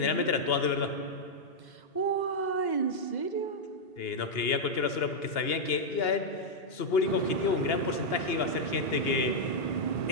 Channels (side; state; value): right; late; 2.8 ms